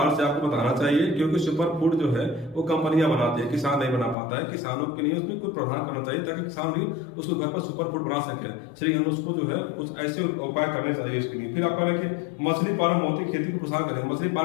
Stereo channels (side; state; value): right; drops out; at 4.2 s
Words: से आपको बताना चाहिए, क्योंकि सुपर फूड जो है वो कंपनियां बनाती है, किसान नहीं बना पाता है। किसानों के लिए उसमें कुछ प्रावधान करना चाहिए ताकि किसान भी उसको घर पर सुपर फूड बना सके। श्री अन्न उसको जो है कुछ ऐसे उपाय करने चाहिए इसके लिए। फिर आप कह रहे हैं कि मछली पालन मोती खेती को प्रोत्साहन करेंगे। मछली